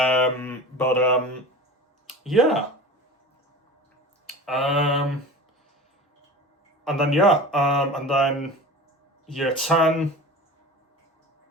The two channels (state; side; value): normal; both; correlation 0.34